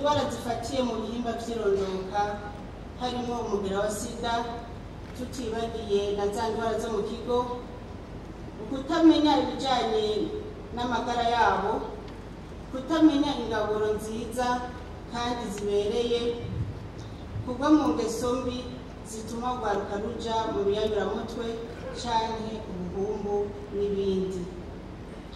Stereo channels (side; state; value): both; identical; correlation 1.00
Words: zifatiye mu bihimba by'irondoka harimo umugera wa sida, tutibagiye na za ndwara zo mu kigo, ukutamenya ibijyanye n'amagara yabo, kutamenya ingaburo nziza kandi zibereye, kugwa mu ngeso mbi zituma urwaruka ruja mu biyayuramutwe canke ubuhumbu n'ibindi.